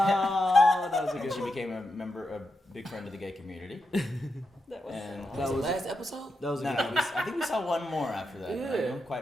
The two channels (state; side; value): normal; both; correlation 0.86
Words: that was a And good she one. became a big friend of the gay community. That was And That was last episode? That was a no, good no, I think we saw one more after that. Yeah. I don't